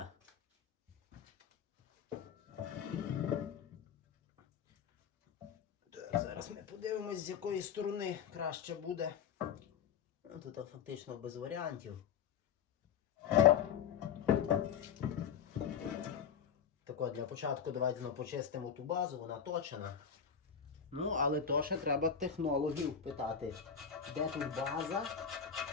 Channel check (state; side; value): quieter; right; 7.5 dB